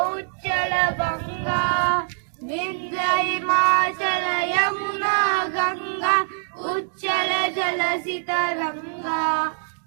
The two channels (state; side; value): silent; left; digital silence